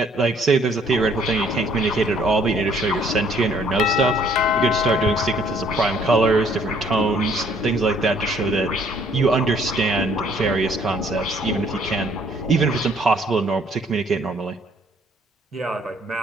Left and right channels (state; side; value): normal; both; correlation 0.62